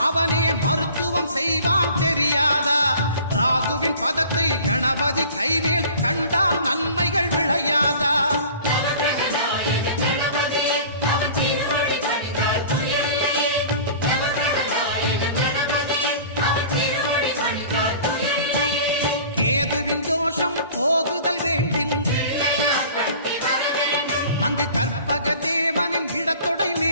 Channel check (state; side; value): inverted; both; correlation -0.44